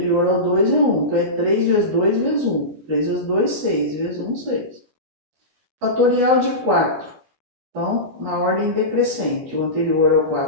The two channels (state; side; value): late; left; 14 ms